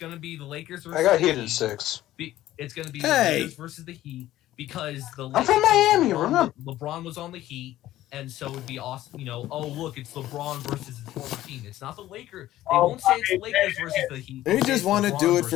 to be the Lakers versus I got the Heat in 6. It's going to be the Lakers versus the Heat because the Lakers... I'm from Miami, remember? LeBron was on the Heat, and so it'd be awesome. Look, it's LeBron versus his former team. It's not the Lakers. They won't say it's the Lakers versus the Heat. They just want to do it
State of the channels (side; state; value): right; quieter; 14.4 dB